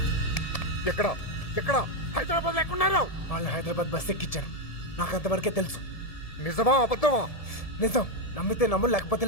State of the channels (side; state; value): right; late; 1.7 ms